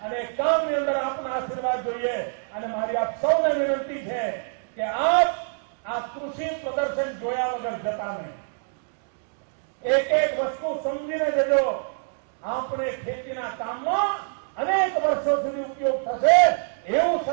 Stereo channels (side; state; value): left; silent; digital silence